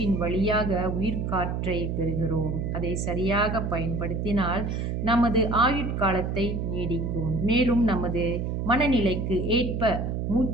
வழியாக உயிர்காற்றை பெறுகிறோம். அதை சரியாக பயன்படுத்தினால் நமது ஆயுட்காலத்தை நீடிக்கும். மேலும் நமது மனநிலைக்கு ஏற்ப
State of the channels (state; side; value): noise; right; hum, 2 dB below the sound